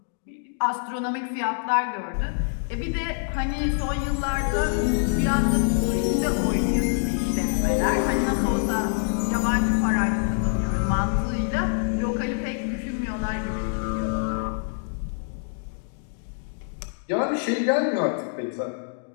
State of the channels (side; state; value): right; silent; digital silence